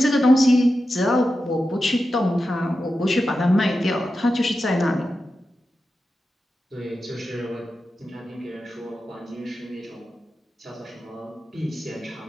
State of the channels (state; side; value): normal; both; correlation 0.91